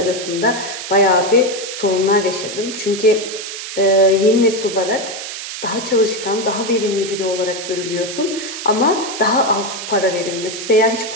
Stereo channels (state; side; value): noise; right; hiss, 8 dB below the sound